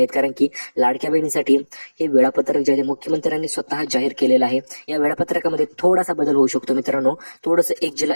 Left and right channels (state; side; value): inverted; both; correlation -1.00